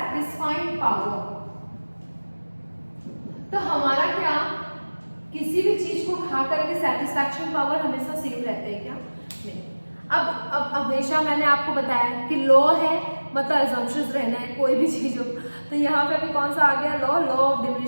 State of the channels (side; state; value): both; inverted; correlation -1.00